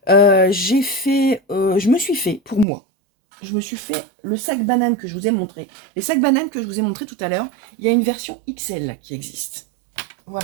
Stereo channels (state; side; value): drops out; left; at 2.7 s